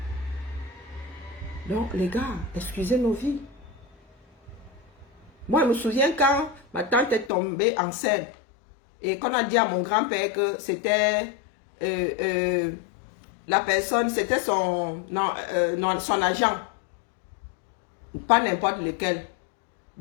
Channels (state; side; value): drops out; right; at 7.3 s